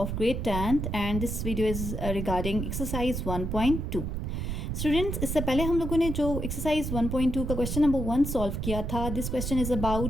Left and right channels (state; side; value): noise; right; rumble, 3 dB below the sound